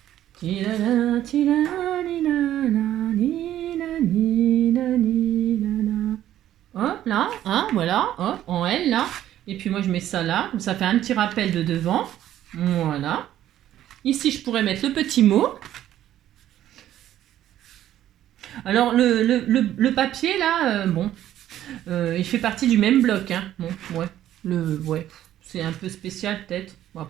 Hop, là. Hein, voilà. Hop, en L, là. Et puis, moi, je mets ça là. Ça fait un petit rappel de devant. Voilà. Ici, je pourrais mettre le petit mot. Alors, le papier, là, bon, il fait partie du même bloc. Hein. Bon, ouais, c'est un peu spécial, peut-être. Bon,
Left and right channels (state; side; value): quieter; left; 12.3 dB